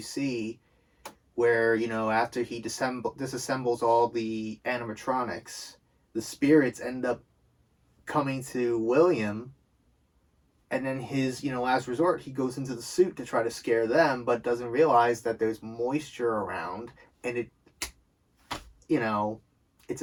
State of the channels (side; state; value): both; identical; correlation 1.00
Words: see where, after he disassembles all the animatronics, the spirits end up coming to William, and then his, last resort, he goes into the suit to try to scare them, but doesn't realize that there's moisture around, and it, it's